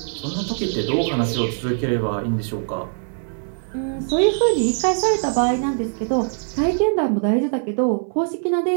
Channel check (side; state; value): left; silent; 64 dB below the other